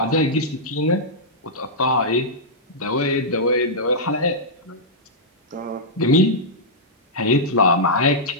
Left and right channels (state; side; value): normal; both; correlation -0.10